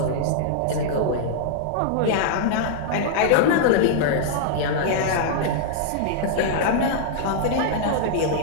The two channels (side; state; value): both; different; correlation -0.01